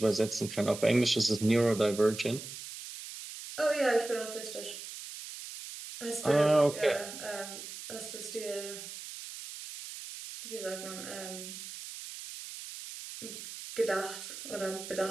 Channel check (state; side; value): noise; right; hiss, 11 dB below the sound